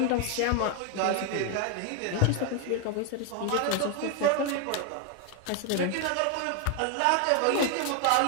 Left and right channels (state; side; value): different; both; correlation 0.01